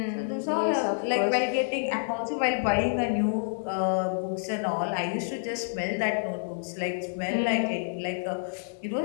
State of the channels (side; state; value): right; silent; digital silence